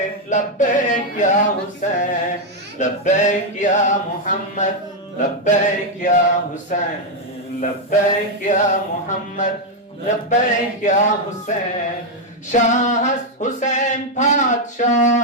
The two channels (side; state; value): both; normal; correlation 0.01